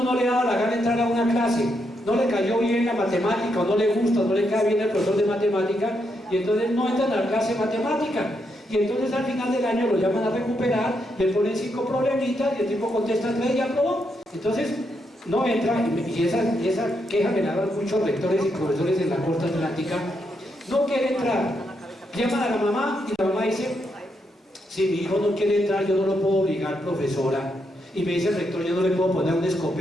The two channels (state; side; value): normal; both; correlation 0.80